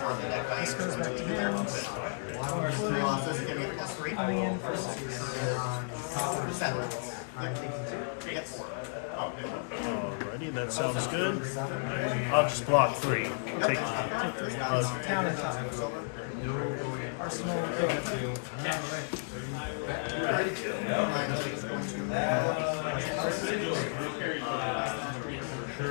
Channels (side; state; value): right; silent; digital silence